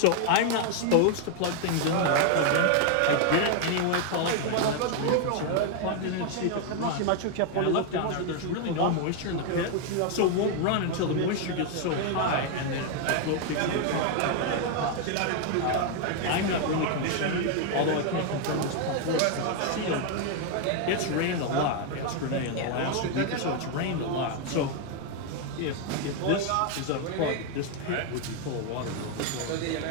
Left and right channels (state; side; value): different; both; correlation 0.00